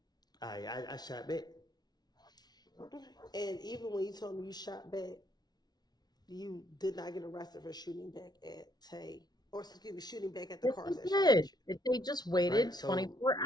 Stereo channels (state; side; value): late; right; 0.19 ms